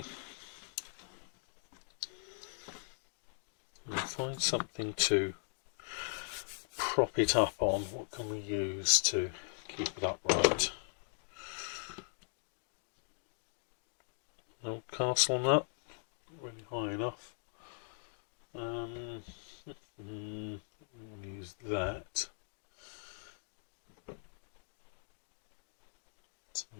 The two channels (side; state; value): right; silent; digital silence